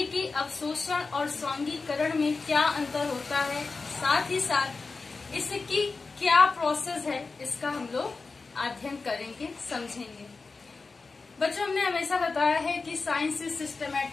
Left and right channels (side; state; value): right; quieter; 4.1 dB